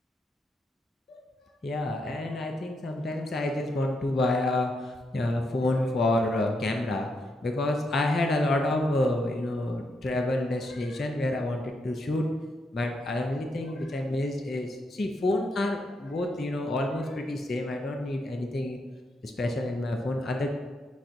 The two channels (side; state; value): both; normal; correlation 0.80